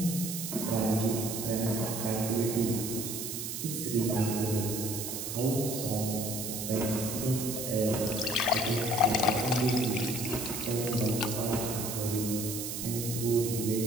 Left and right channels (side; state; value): right; noise; hiss, 5 dB below the sound